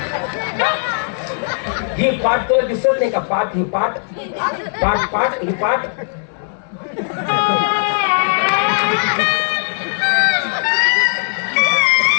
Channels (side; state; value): right; silent; digital silence